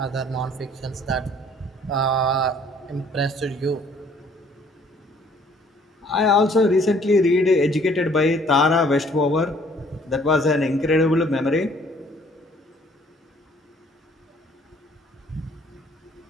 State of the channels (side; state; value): both; normal; correlation 0.59